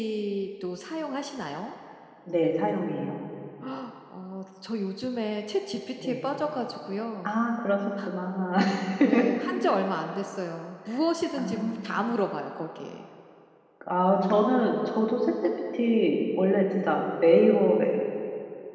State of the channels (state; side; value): identical; both; correlation 1.00